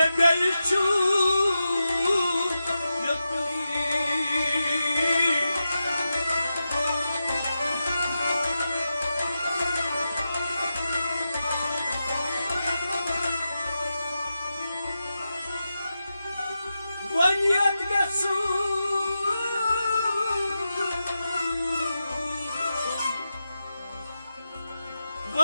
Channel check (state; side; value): inverted; both; correlation -0.90